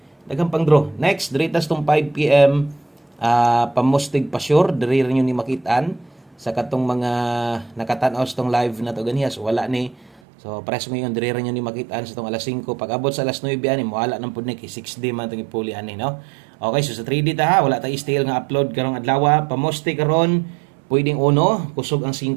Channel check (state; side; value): drops out; left; at 10.2 s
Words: daghang pang draw next diritas tong 5 PM pamustig pa sure diri rin ni makitaan sa katong mga nakatan-aw sa tong live na to ganiya. So wala ni. So press mo yung dire nyo ni makitaan sa tong alas 5 pag abot sa alas 9 ani mo wala nang pud ni kay 6D man tong ipuli ani no. Okay, so sa 3D ta wala ta style nga upload karong adlaw pamoste karon pwedeng uno kusog ang 5